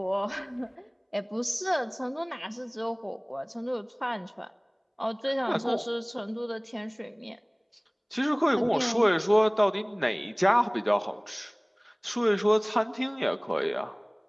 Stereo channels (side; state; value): both; identical; correlation 1.00